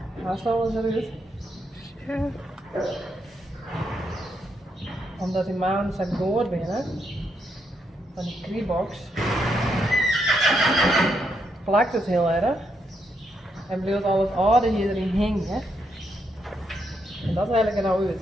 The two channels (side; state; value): both; normal; correlation 0.79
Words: Waar is alles eruit? Ja. Omdat die maan zijn goor binnen van die Kribox plakt het heel erg en blijft al het oude hier erin hangen. En dat haal ik er nou uit.